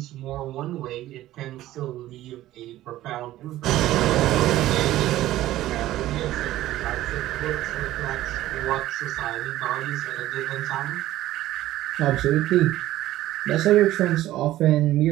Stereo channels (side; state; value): left; quieter; 14.8 dB